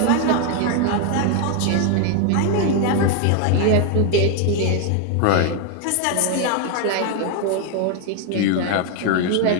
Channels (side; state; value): both; different; correlation 0.01